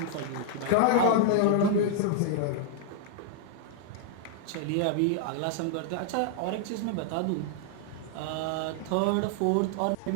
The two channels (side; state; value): both; different; correlation 0.00